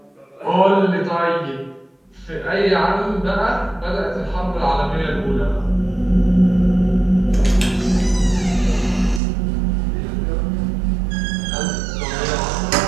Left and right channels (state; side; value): drops out; left; at 9.2 s